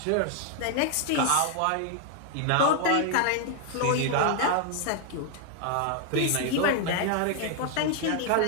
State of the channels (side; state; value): both; different; correlation 0.00